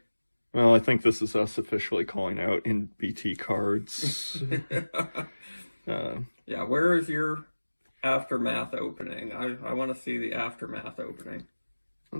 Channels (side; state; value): both; inverted; correlation -1.00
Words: Well, I think this is us officially calling out NBT Cards. Yeah, where is your Aftermath opening? I want to see the Aftermath opening.